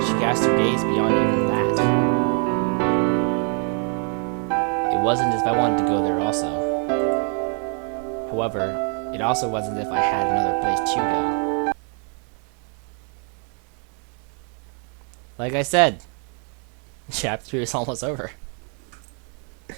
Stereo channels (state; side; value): quieter; left; 39.1 dB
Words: She cast her gaze beyond even that. It wasn't as if I wanted to go there also. However, it also wasn't as if I had another place to go. Like I said, Chapter 3 is almost over.